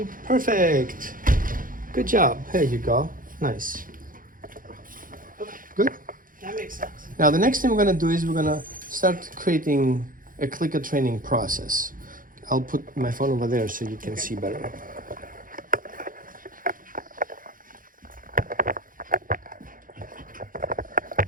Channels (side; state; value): left; late; 0.40 ms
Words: Perfect. Good job. There you go. Nice. Good. That makes sense. Now the next thing we're gonna do is we're gonna start creating a clicker training process. I'll put my phone over there so you can see better.